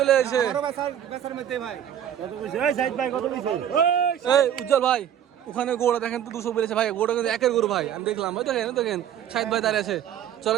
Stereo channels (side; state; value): left; quieter; 10.0 dB